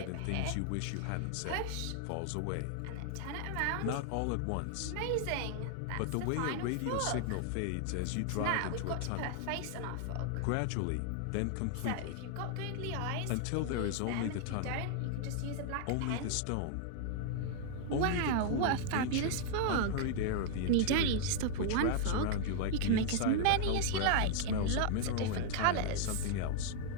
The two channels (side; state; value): both; different; correlation 0.00